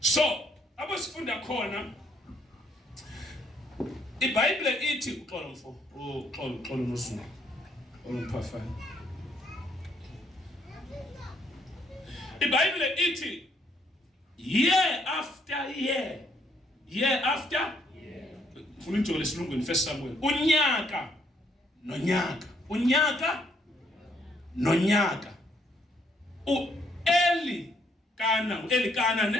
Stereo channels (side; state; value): both; normal; correlation 0.69